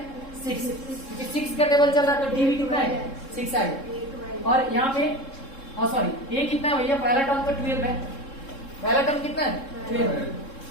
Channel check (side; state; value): right; late; 3.7 ms